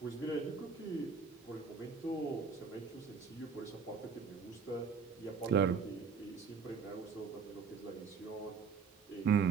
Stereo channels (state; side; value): quieter; left; 5.6 dB